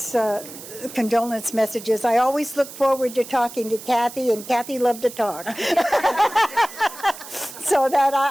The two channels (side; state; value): right; noise; hiss, 14 dB below the sound